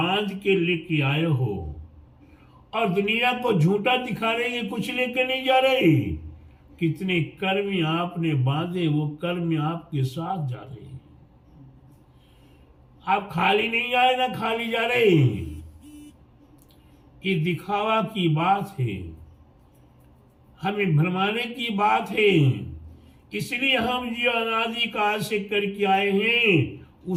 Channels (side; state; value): both; identical; correlation 1.00